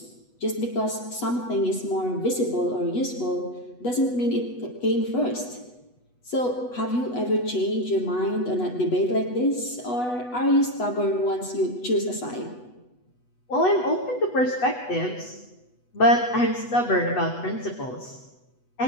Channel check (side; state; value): right; late; 8.1 ms